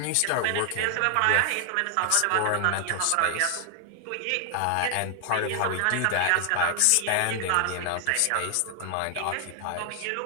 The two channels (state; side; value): different; both; correlation 0.00